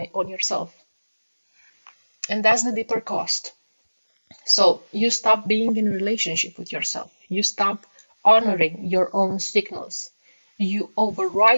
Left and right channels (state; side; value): inverted; both; correlation -1.00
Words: on yourself. And that's the deeper cost. So you stop being in a relationship with yourself. You stop honoring your own signals. You